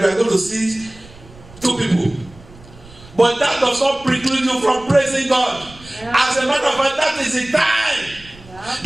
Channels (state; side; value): noise; right; rumble, 22 dB below the sound